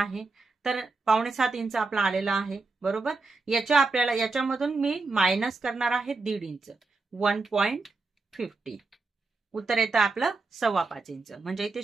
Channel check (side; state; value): left; quieter; 3.8 dB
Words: तर 6.25 इंच आपला आलेला आहे, बरोबर. याच्यामधून मी मायनस करणार आहे 1.5 इंच, 1.50. उत्तर येतं आपलं 5.25 इंच. म्हणजे इथे